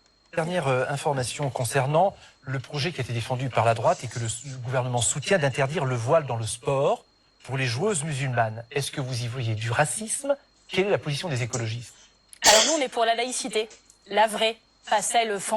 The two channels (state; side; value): identical; both; correlation 1.00